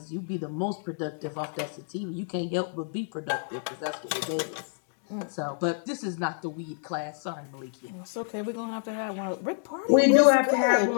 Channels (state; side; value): silent; right; digital silence